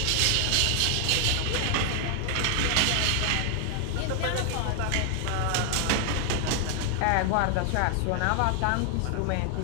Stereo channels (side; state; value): both; different; correlation 0.00